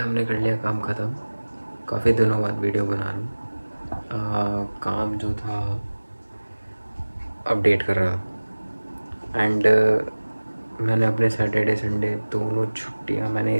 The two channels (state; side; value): inverted; both; correlation -1.00